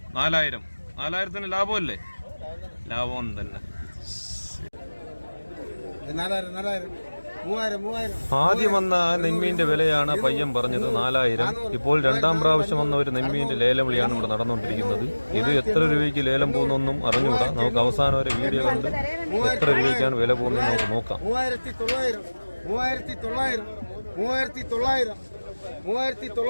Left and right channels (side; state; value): both; inverted; correlation -1.00